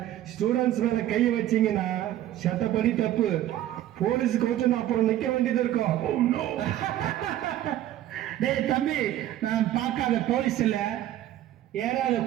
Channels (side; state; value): left; quieter; 12.9 dB